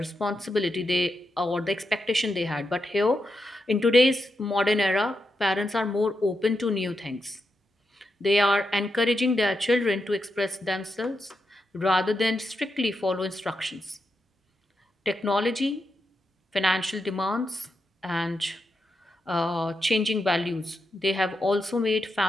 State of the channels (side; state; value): both; normal; correlation 0.85